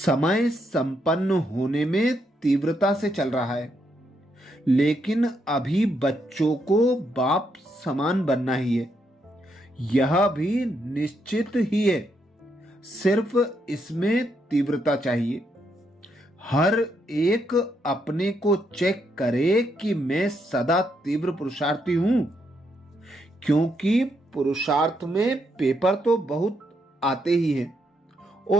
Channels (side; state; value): both; normal; correlation 0.78